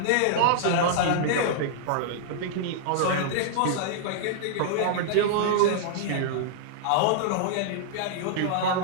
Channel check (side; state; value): both; different; correlation -0.01